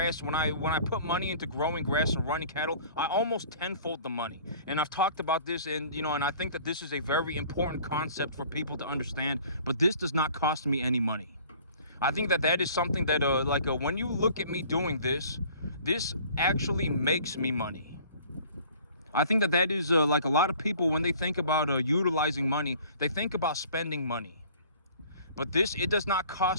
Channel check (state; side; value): inverted; both; correlation -0.50